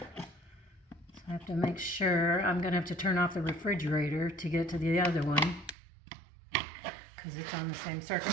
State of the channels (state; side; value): drops out; left; at 5.8 s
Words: So I have to make sure. I'm going to have to turn off the refrigerator to get to the other one, because it's on the same